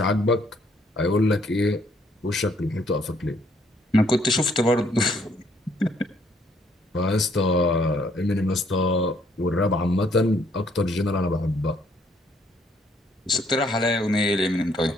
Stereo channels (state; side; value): normal; both; correlation 0.67